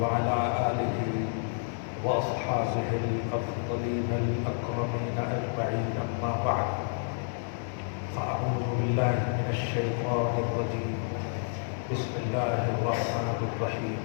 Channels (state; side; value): silent; right; digital silence